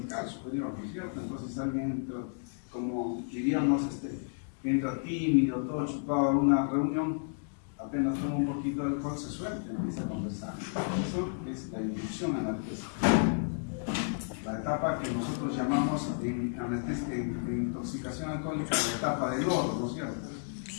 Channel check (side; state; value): right; silent; digital silence